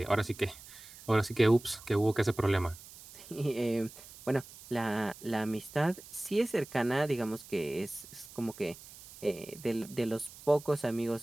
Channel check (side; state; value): right; noise; hiss, 18 dB below the sound